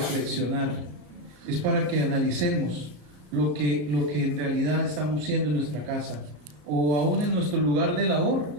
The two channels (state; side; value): late; left; 34 ms